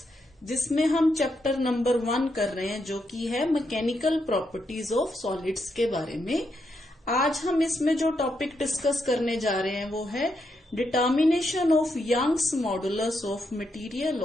जिसमें हम chapter number 1 कर रहे हैं जो कि है मैकेनिकल प्रॉपर्टीज ऑफ सॉलिड्स के बारे में। आज हम इसमें जो टॉपिक डिस्कस करने जा रहे हैं वो है determination of Young's modulus of material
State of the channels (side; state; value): both; normal; correlation 0.81